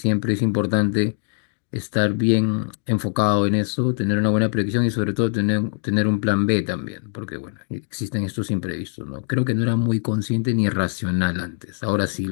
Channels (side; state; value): right; silent; digital silence